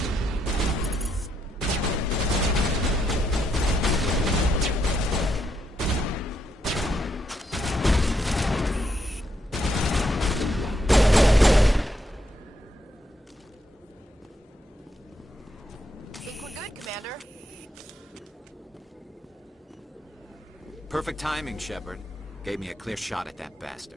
Perfect timing, Shepard. Gave me a clear shot at that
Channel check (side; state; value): both; normal; correlation 0.78